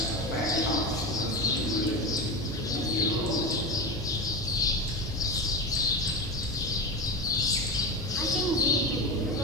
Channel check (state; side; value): normal; both; correlation 0.21